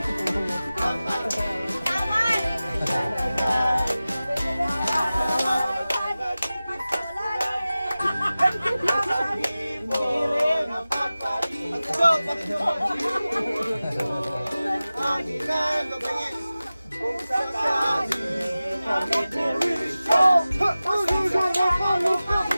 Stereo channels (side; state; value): both; inverted; correlation -0.96